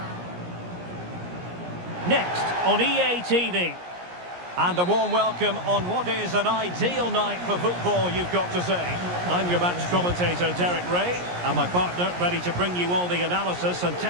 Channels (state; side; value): late; left; 17 ms